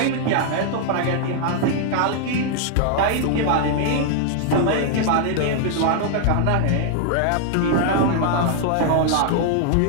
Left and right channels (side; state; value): both; different; correlation 0.00